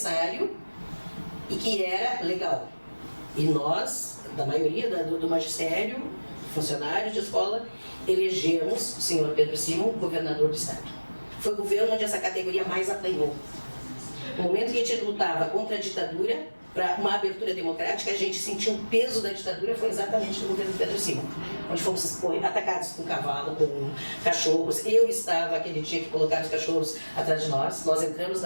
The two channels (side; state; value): both; inverted; correlation -1.00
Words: e que era legal. E nós, da maioria do magistério, funcionários de escola, elegemos o senhor Pedro Simon governador do estado. Foi o governo onde essa categoria mais apanhou. No momento que a gente lutava contra a ditadura, para uma abertura democrática, a gente sentiu o peso da ditadura, foi exatamente no governo Pedro Simon, onde fomos atacados com cavalo, com cachorros. Eu estava aquele dia que colocaram os cachorros atrás de nós. Nós entramos